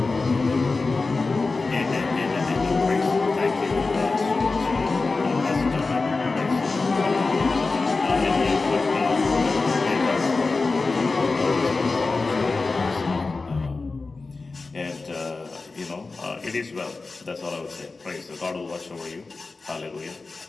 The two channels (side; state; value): right; quieter; 3.8 dB